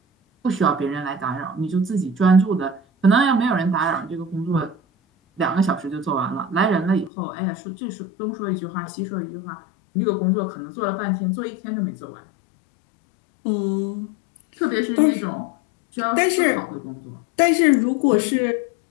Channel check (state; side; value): drops out; right; at 7.1 s